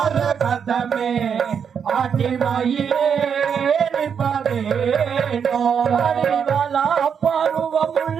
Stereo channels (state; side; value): quieter; left; 7.1 dB